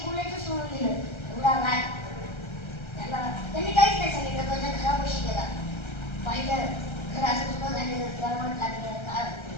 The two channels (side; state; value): right; late; 1.3 ms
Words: बोलायचं सोडून दिलं. एवढा राग त्यांनी काहीच नाही सांगितलं. त्याच्या घरापाशी गेला, पाहिलं घर असं तुला झालेलं, गरमट लागलं,